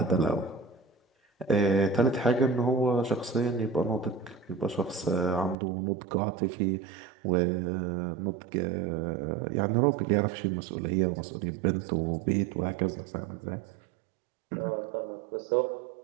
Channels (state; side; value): drops out; left; at 5.6 s